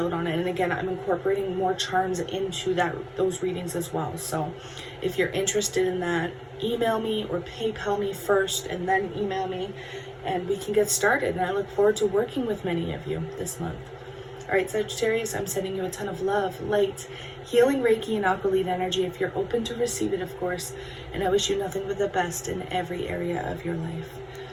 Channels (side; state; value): both; identical; correlation 1.00